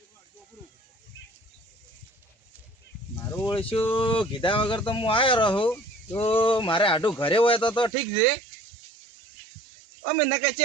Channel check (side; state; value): left; drops out; at 7.9 s